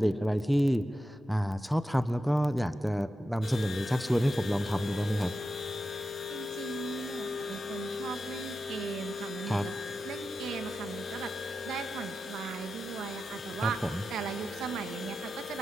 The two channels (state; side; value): normal; both; correlation 0.91